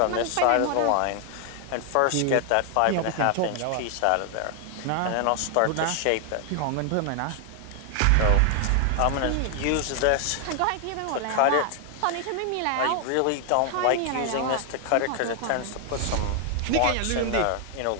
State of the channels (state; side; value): different; both; correlation 0.00